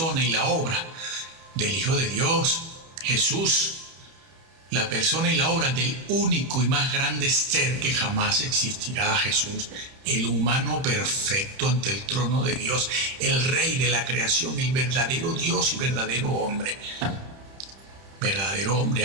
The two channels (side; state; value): left; late; 31 ms